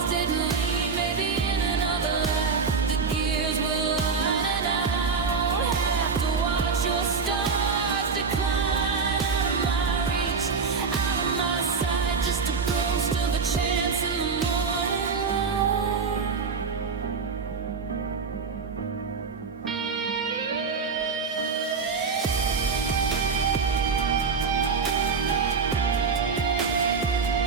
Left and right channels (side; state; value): left; quieter; 5.2 dB